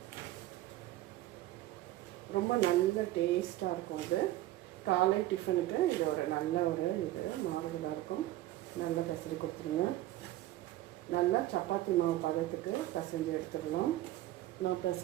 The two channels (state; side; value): quieter; left; 15.2 dB